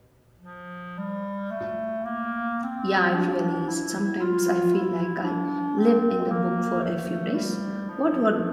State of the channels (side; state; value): both; identical; correlation 1.00